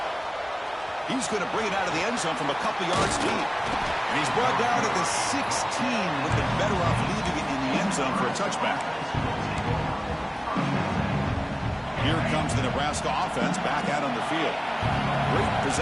He's going to bring it out of the end zone from a couple yards deep. And he's brought down at the 16, with the better off leaving it in the end zone for a touchback. Here comes the Nebraska offense back out on the field. Great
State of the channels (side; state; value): both; identical; correlation 1.00